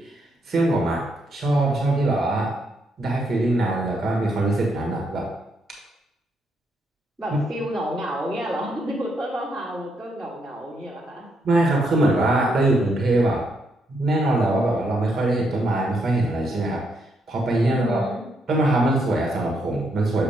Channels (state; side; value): normal; both; correlation 0.77